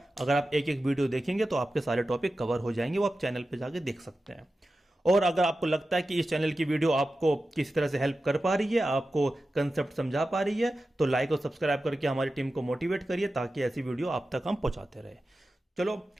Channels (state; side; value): normal; both; correlation 0.93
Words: अगर आप एक एक वीडियो देखेंगे तो आपके सारे टॉपिक कवर हो जाएंगे, वो आप चैनल पे जाके देख सकते हैं। और अगर आपको लगता है कि इस चैनल की वीडियो आपको किसी तरह से हेल्प कर पा रही है, आपको कंसेप्ट समझा पा रही है, तो लाइक और सब्सक्राइब करके हमारी टीम को मोटिवेट करिए ताकि ऐसी वीडियो आप तक हम पहुंचाते रहे। चलो